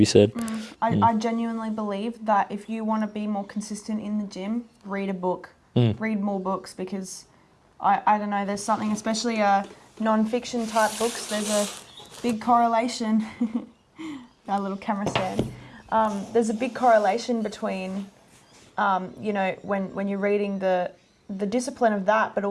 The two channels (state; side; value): identical; both; correlation 1.00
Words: said. I genuinely believe that if you want to be more consistent in the gym, read a book. Read more books, because I don't know, there's something, especially non-fiction type books, there's a big correlation. Our little camera stand. There's a big correlation between, you know, when you're reading the discipline of that, but